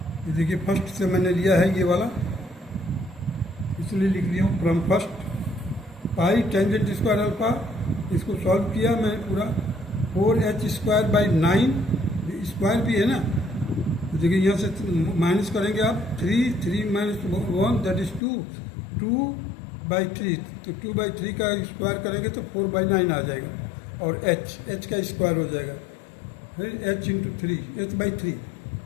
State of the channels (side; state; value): right; drops out; at 18.2 s